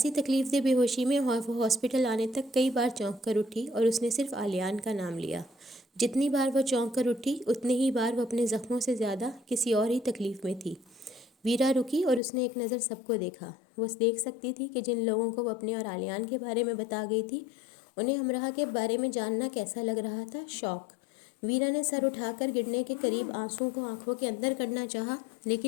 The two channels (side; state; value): right; drops out; at 12.2 s